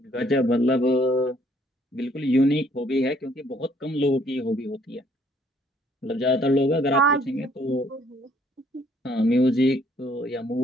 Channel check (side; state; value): both; normal; correlation 0.64